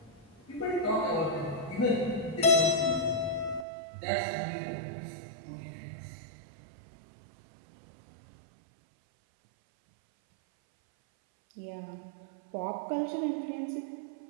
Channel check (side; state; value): left; drops out; at 3.7 s